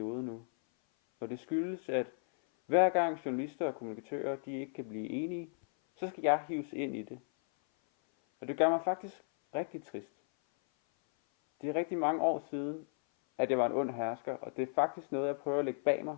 nu. Og det skyldes, at hver gang journalister og kommunikatører de ikke kan blive enige, så skal jeg hives ind i det. Og det gør mig faktisk rigtig trist. Det er rigtig mange år siden, at jeg var en ond hersker, og det er faktisk noget, jeg prøver at lægge bag mig.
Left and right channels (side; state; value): right; silent; 55 dB below the other